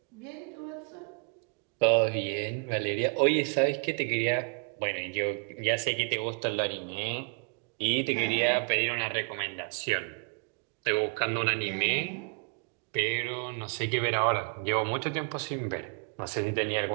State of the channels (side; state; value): left; quieter; 39.8 dB